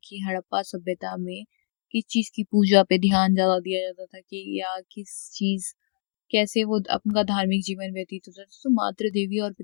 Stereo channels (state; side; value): silent; right; digital silence